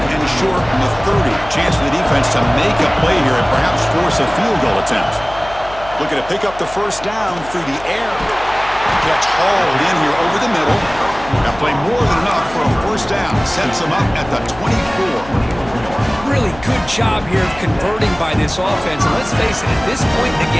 and short from the 30. Chance for the defense to make a play here and perhaps force a field goal attempt. Looking to pick up the first down through the air. Catch hauled in here over the middle. That play more than enough for a first down. Sets them up at the 24. Really good job here of converting by this offense. And let's face it, at this point in the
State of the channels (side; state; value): left; noise; hum, 17 dB below the sound